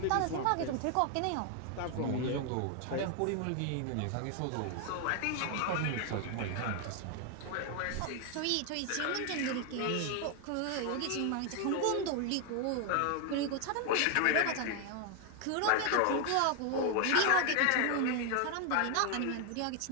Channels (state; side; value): different; both; correlation 0.00